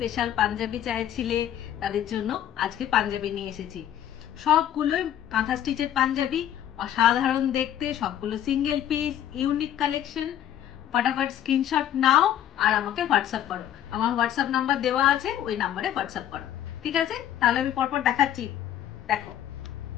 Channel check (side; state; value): right; quieter; 11.2 dB